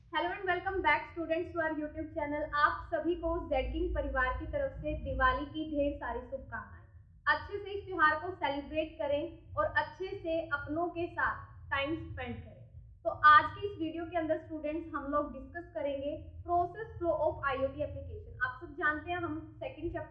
Hello and welcome back students to our YouTube channel. आप सभी को जेड किंग परिवार की तरफ से दिवाली की ढेर सारी शुभकामनाएं। अच्छे से इस त्योहार को सेलिब्रेट करें और अच्छे से अपनों के साथ टाइम स्पेंड करें। तो आज की इस वीडियो के अंदर स्टूडेंट्स हम लोग डिस्कस करेंगे process flow of IoT application. आप सब जानते हैं हम सेकंड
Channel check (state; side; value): identical; both; correlation 1.00